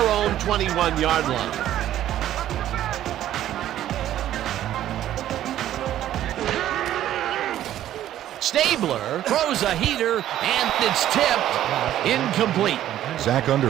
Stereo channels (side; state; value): left; quieter; 12.3 dB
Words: 21-yard line. Stabler throws a heater, and it's tipped incomplete. Zach